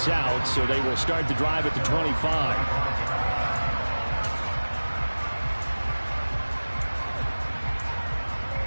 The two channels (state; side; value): inverted; both; correlation -1.00